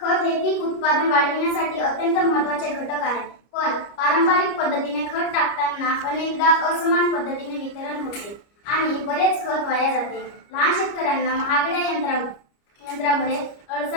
हे पीक उत्पादन वाढविण्यासाठी अत्यंत महत्त्वाचे घटक आहे. पण पारंपरिक पद्धतीने खत टाकताना अनेकदा असमान पद्धतीने वितरण होते आणि बरेच खत वाया जाते. लहान शेतकऱ्यांना महागड्या यंत्रामुळे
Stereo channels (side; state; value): right; late; 29 ms